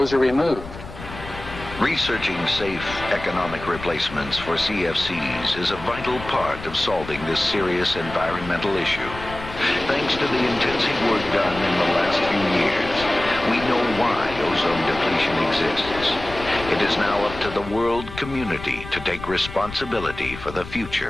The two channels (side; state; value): left; noise; rumble, 13 dB below the sound